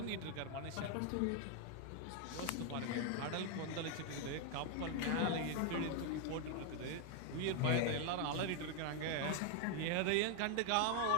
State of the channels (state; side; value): different; both; correlation 0.01